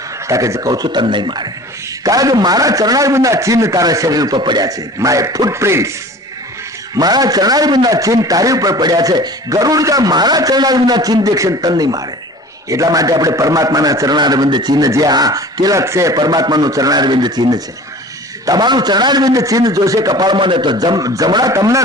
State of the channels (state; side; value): normal; both; correlation 0.42